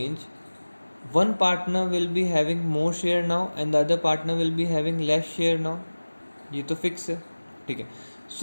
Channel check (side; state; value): both; inverted; correlation -1.00